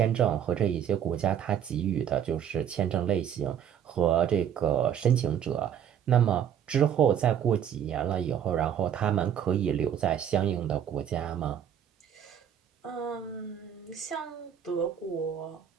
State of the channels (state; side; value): quieter; left; 9.2 dB